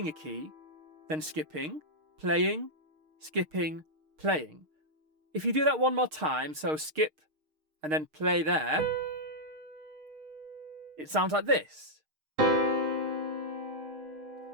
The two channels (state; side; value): late; left; 6.5 ms